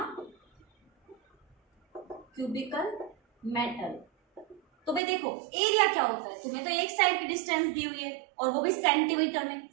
क्यूबिकल मेटल। तो भाई देखो एरिया क्या होता है, तुम्हें तो एक साइड की डिस्टेंस दी हुई है और वो भी सेंटीमीटर में।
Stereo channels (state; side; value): drops out; left; at 5.0 s